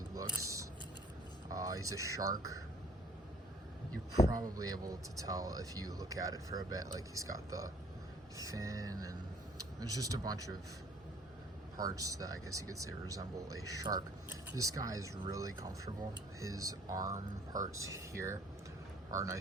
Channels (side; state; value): both; normal; correlation 0.56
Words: looks. He's a shark. You're probably able to tell if you look at it for a bit. Like, he's got the fin, and there's just a bunch of parts that I guess you could say resemble a shark. This guy is really comfortable. His arm parts here are